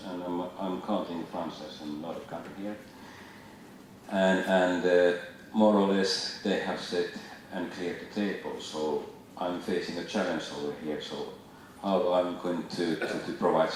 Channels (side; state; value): both; identical; correlation 1.00